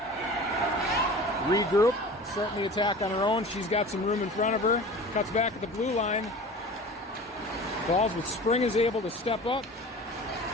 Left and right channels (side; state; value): both; normal; correlation 0.38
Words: Regroup. Starting the attack on her own. She's got some room in front of her. Cuts back at the blue line. Falls with Spring is able to step up.